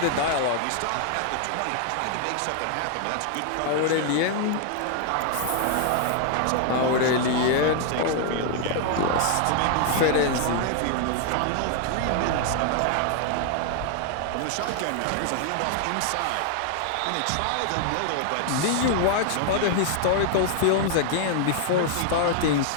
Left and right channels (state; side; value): different; both; correlation 0.00